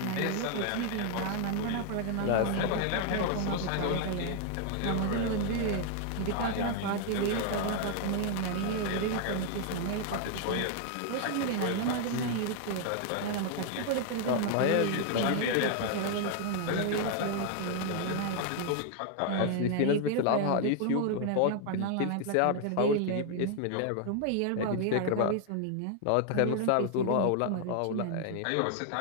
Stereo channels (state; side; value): different; both; correlation 0.00